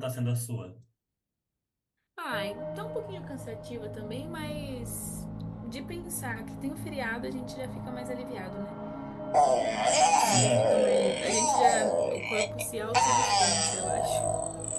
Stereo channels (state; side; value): identical; both; correlation 1.00